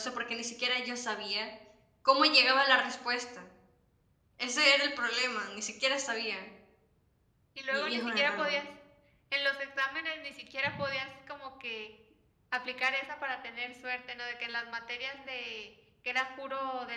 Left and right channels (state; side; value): identical; both; correlation 1.00